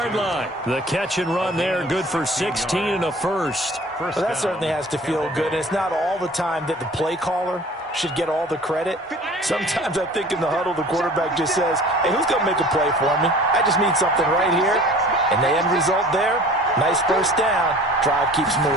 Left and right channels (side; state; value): both; normal; correlation 0.46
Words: line. The catch and run there, good for 16 and a first. Well, that certainly has to feel good. And it's not all the time that the play caller should get all the credit. Sometimes I think in the huddle, the quarterback just says, hey, who's going to make a play for me? I just need something right here. And the end result there, nice first down. Drive keeps